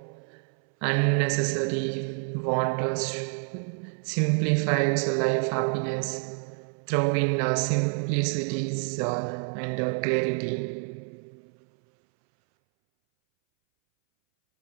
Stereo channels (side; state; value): left; silent; 60 dB below the other